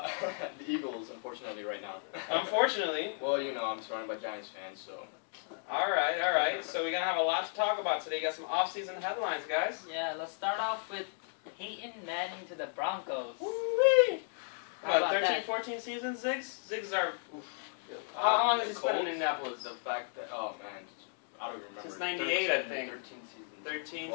Eagles, unfortunately, right now. Unfortunately. Well, you know, I'm surrounded by Giants fans, so. Alright. So we're going to have a lot to talk about today. Got some off-season headlines, guys. Yeah, let's start off with Peyton Manning to the Broncos. Woo-wee! How about 13, that? 14 seasons, Ziggs? Ziggs are... How long has he spent in Indianapolis? The fact that, oh man, I don't remember. Since 98, I 13 think. 13 seasons. 13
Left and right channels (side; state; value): right; silent; 55 dB below the other